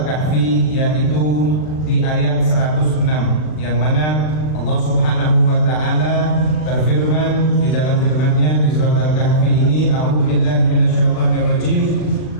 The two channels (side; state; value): right; late; 39 ms